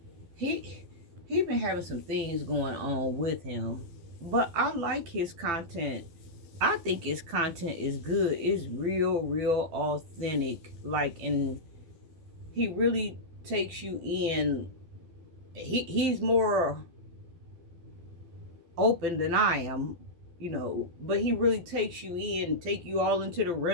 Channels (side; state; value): left; late; 12 ms